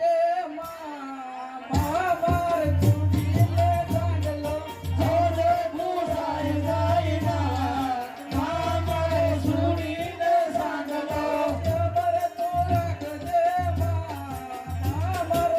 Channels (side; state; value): both; identical; correlation 1.00